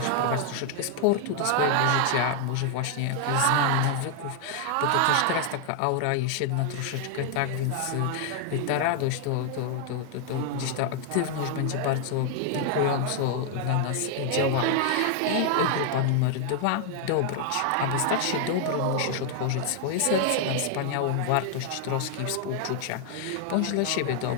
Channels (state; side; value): different; both; correlation 0.00